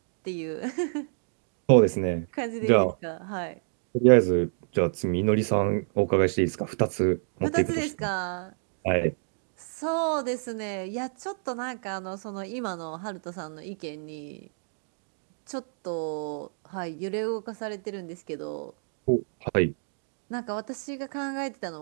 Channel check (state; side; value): silent; left; digital silence